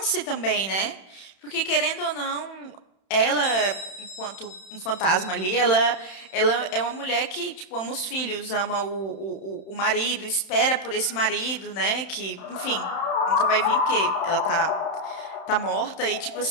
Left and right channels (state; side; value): late; right; 31 ms